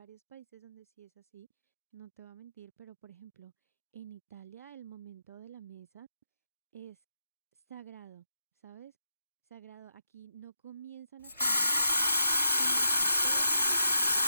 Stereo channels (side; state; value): both; inverted; correlation -0.83